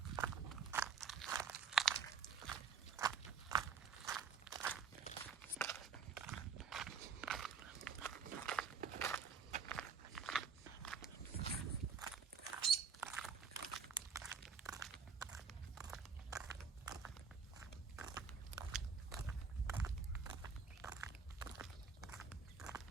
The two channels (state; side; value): quieter; left; 6.1 dB